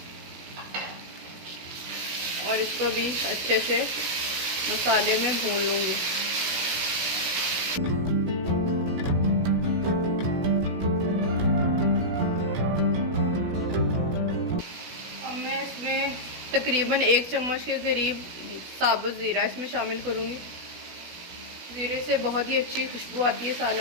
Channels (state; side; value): late; left; 17 ms